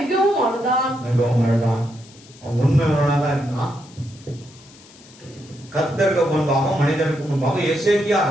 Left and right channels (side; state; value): left; noise; hiss, 24 dB below the sound